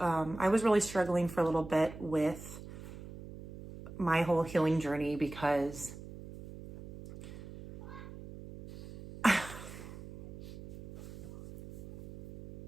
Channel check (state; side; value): noise; right; hum, 14 dB below the sound